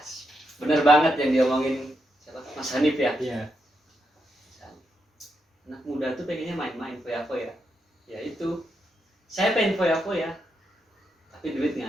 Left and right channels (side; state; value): both; normal; correlation 0.82